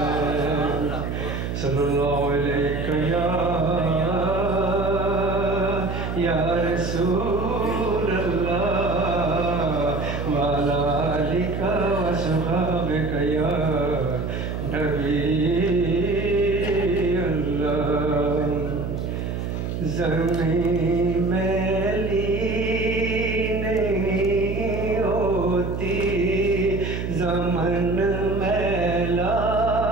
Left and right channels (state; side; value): noise; right; hum, 4 dB below the sound